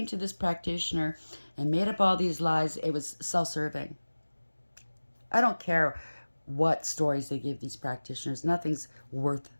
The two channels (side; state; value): both; inverted; correlation -1.00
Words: to this practitioner and made up all these lies, it was self-serving. I don't care what stories they give these practitioners. Nothing's worth